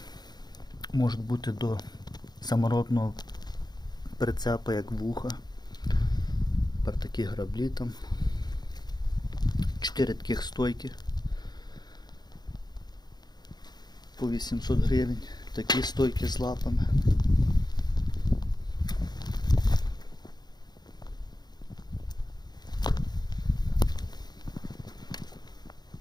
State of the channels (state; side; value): late; right; 0.20 ms